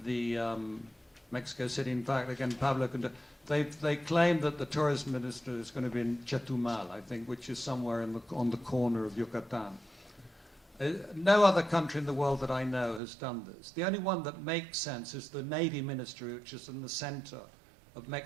the Mexico City. In fact, again, Pablo, they claim that the tourism minister is going to be in Chetumal, I think, which is somewhere on the corner of Yucatan. No other country in the world that I know has done this. The only one that makes sense is the Navy Ministry, which is in the center of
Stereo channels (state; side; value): drops out; left; at 13.0 s